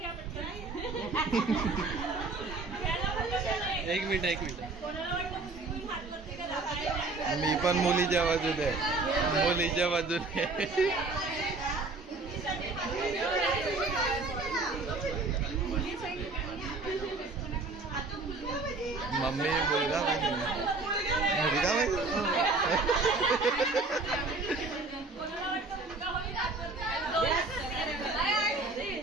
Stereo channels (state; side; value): quieter; left; 3.5 dB